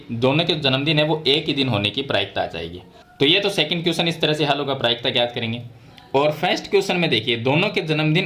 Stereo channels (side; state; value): both; identical; correlation 1.00